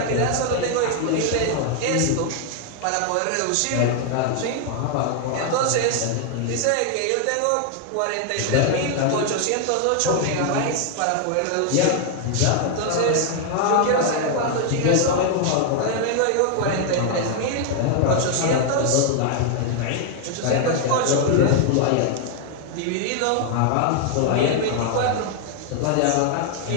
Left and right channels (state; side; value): different; both; correlation 0.00